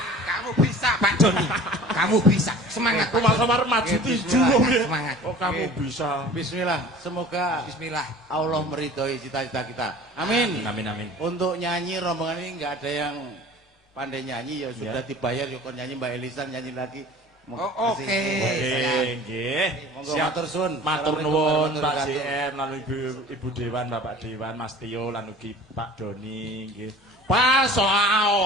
Kamu bisa Pak Doni. Kamu bisa. Semangat. Aku kamar maju Oke, tujuh. bismillah. Semangat. Oh kamu Oke. bisa. Bismillah, semoga Bismillah. Allah meridhoi cita-cita kita. Amin. Amin amin. Untuk nyanyi rombongan ini nggak ada yang pandai nyanyi ya sudah Ya. dibayar ya kon nyanyi Mbak Elisa nyanyi lagi. Oh, oke. Oke, nggih. Monggo matur suwun. Matur Assalamualaikum nuwun warahmatullahi Pak wabarakatuh. JM lan Ibu Dewan, Bapak Dewan, Mas Tio lan ugi Pak Doni nggih. Pak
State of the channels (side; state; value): both; normal; correlation 0.43